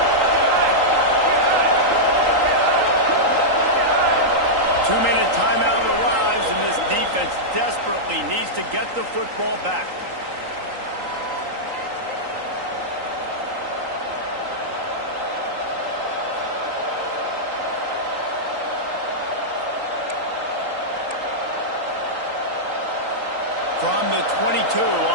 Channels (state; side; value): late; left; 3.8 ms